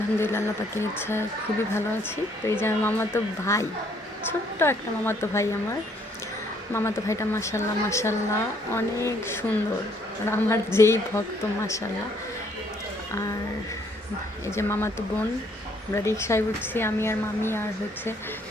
আল্লাহ পাকের ইচ্ছায় খুবই ভালো আছি। তো এই যে আমার মামাতো ভাই, ছোট্ট একটা মামাতো ভাই আমার। মামাতো ভাইটা মাশাআল্লাহ মাশাআল্লাহ অনেক সুন্দর। আর আমার যেই ভক্ত মাশাআল্লাহ। আর এই যে মামাতো বোন, আমরা রিকশায় উঠছি আমি আর মামি আর হচ্ছে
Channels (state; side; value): normal; both; correlation 0.66